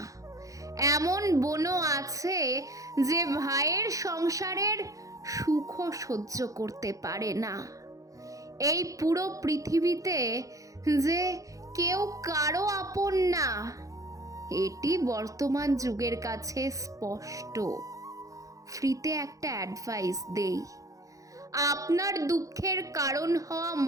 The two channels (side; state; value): left; late; 0.16 ms